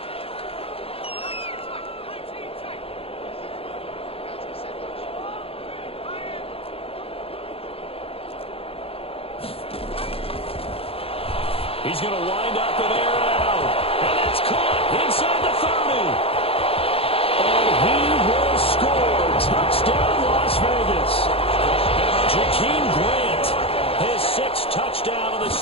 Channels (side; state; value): right; late; 0.27 ms